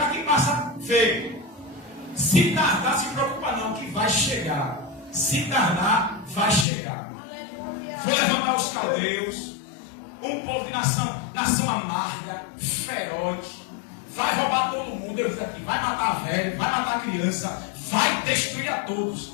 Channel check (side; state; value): right; drops out; at 6.7 s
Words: quem passa feio. Se tardar, se preocupa não, que vai chegar. Se tardar, vai chegar. Vou levantar os caldeus, um povo de nação amarga, feroz, vai roubar todo mundo. Eu disse aqui: vai matar velho, vai matar criança, vai destruir a todos.